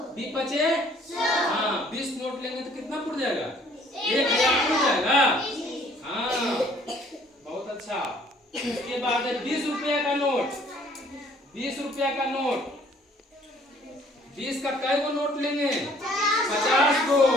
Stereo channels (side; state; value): both; normal; correlation 0.58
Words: 20 बचे, हाँ 20 नोट लेंगे तो कितना पुड़ जाएगा? 1000 पुड़ जाएगा। हाँ बहुत अच्छा। उसके बाद है 20 रुपया का नोट। 20 रुपया का नोट, 20 का कई गो नोट लेंगे? 50 को।